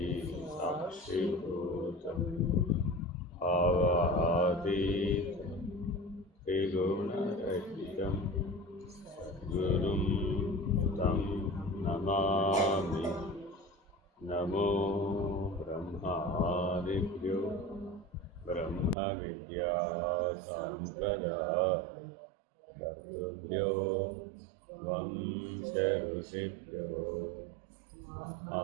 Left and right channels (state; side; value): drops out; left; at 18.9 s